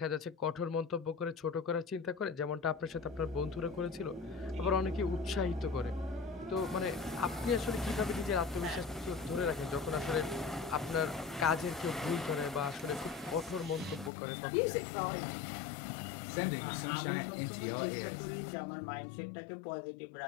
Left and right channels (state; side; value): drops out; right; at 14.1 s